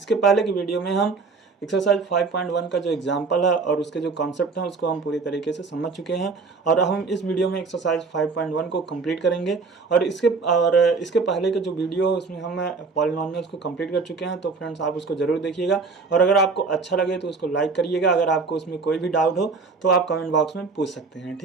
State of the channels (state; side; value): quieter; left; 4.3 dB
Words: पहले की वीडियो में हम एक्सरसाइज 5.1 का जो एग्जांपल है और उसके जो कॉन्सेप्ट हैं उसको हम पूरी तरीके से समझ चुके हैं। और हम इस वीडियो में एक्सरसाइज 5.1 को कंप्लीट करेंगे। और इसके पहले का जो वीडियो है उसमें हम पॉलिनॉमियल्स को कंप्लीट कर चुके हैं। तो फ्रेंड्स, आप उसको ज़रूर देखिएगा और अगर आपको अच्छा लगे तो उसको लाइक करिएगा। अगर आपको उसमें कोई भी डाउट हो तो आप कमेंट बॉक्स में पूछ सकते हैं,